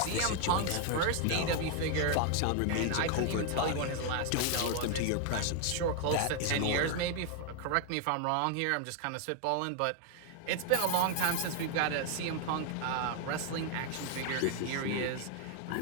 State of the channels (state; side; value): different; both; correlation 0.00